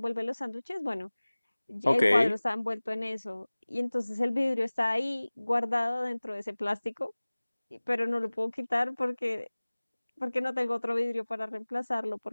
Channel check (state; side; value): inverted; both; correlation -1.00